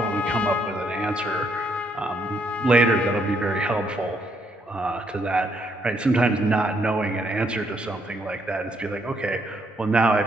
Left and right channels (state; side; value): normal; both; correlation 0.73